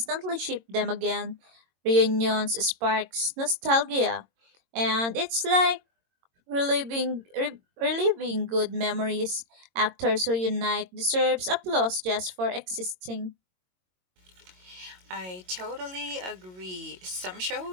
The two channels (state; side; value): late; left; 22 ms